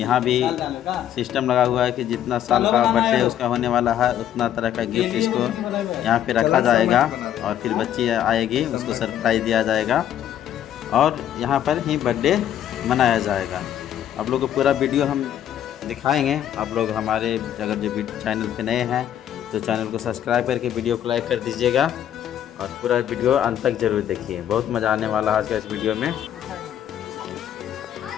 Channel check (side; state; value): right; quieter; 10.7 dB